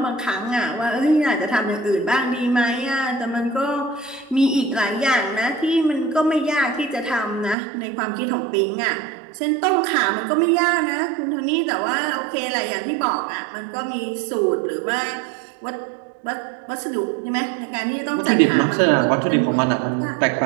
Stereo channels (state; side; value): drops out; left; at 7.6 s